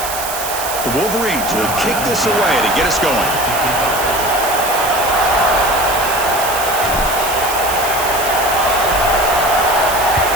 The Wolverines will kick this away to get us going.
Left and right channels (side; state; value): right; noise; hiss, 6 dB below the sound